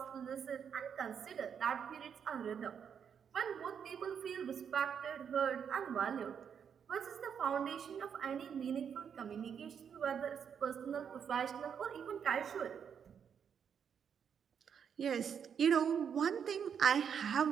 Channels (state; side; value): quieter; left; 7.6 dB